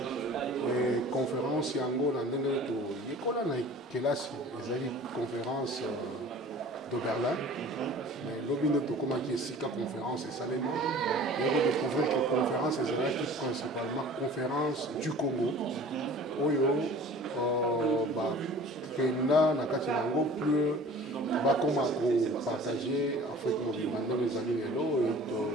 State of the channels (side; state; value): both; normal; correlation 0.45